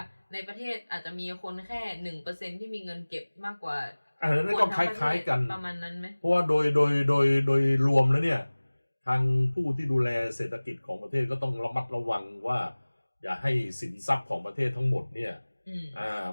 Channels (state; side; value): inverted; both; correlation -1.00